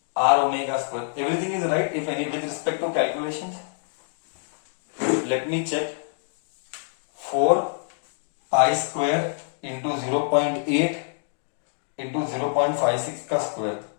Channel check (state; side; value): silent; right; digital silence